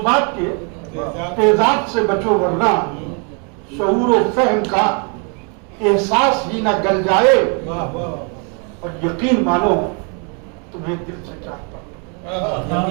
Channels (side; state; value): left; quieter; 36.2 dB